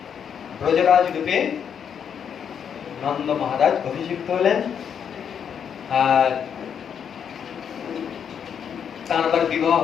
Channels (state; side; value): quieter; right; 7.8 dB